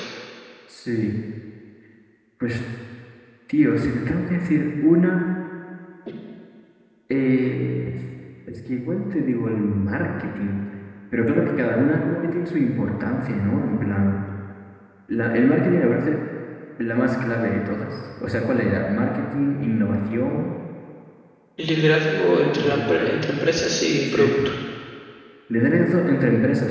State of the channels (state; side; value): identical; both; correlation 1.00